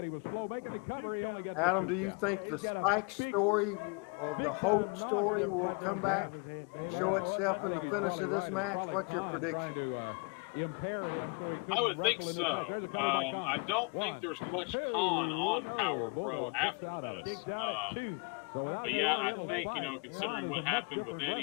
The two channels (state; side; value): quieter; right; 35.0 dB